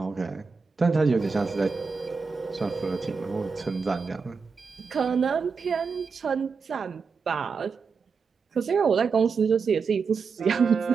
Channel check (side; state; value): left; quieter; 5.1 dB